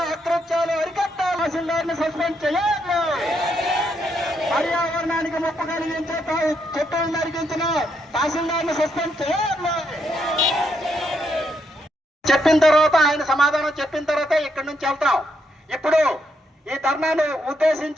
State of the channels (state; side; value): normal; both; correlation 0.77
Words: అకృత్యాలు అరికట్టాలి. తహసీల్దార్ను సస్పెండ్ చేయాలి. పర్యావరణానికి ముప్పు కలిగించే చెట్టులు నరికించిన తహసీల్దార్ను సస్పెండ్ చేయాలి. చెప్పిన తర్వాత ఆయన సమాధానం చెప్పిన తర్వాత ఇక్కడి నుంచి వెళ్తాం. ఇప్పుడు ఈ ధర్నాను